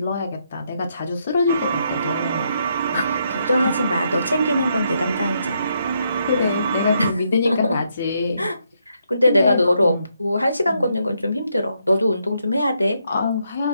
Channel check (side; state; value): both; inverted; correlation -0.77